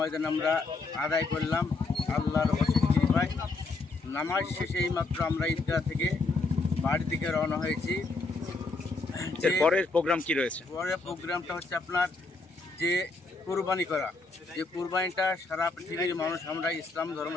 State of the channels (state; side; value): quieter; right; 3.6 dB